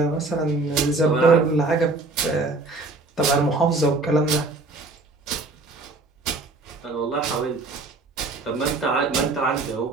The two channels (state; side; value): quieter; left; 3.4 dB